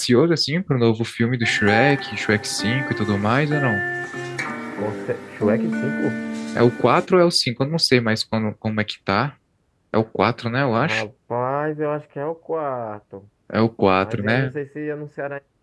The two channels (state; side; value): identical; both; correlation 1.00